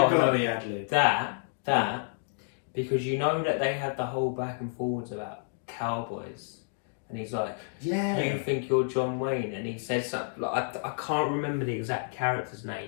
got to be ad-lib. That, because you know that they had the whole back and forwards about cowboys. And he's like, yeah, you think you're John Wayne? And he says something, like, I can't remember the exact character's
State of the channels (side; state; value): right; silent; digital silence